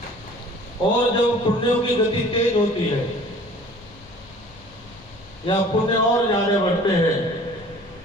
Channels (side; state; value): left; noise; rumble, 23 dB below the sound